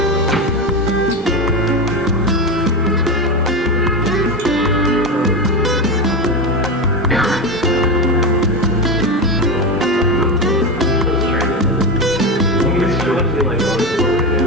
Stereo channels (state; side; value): normal; both; correlation 0.17